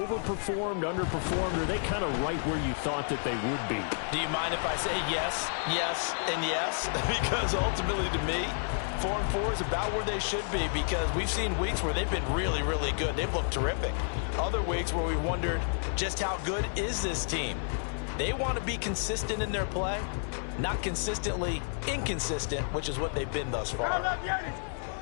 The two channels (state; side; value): silent; right; digital silence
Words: underperformed, or are they kind of right where you thought that they would be? Do you mind if I say yes, yes, and yes? Because ultimately to me, 4-4 is about where they should be because we've seen weeks where they've been really, really good. They've looked terrific. Other weeks where we wondered just how good is this team. They want to be consistent in their play, not consistently inconsistent, which is what they've been thus far.